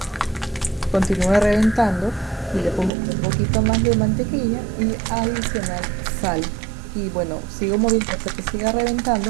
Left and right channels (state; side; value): drops out; left; at 2.9 s